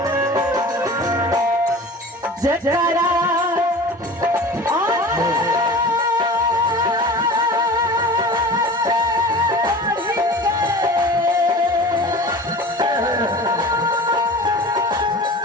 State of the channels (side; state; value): both; normal; correlation 0.38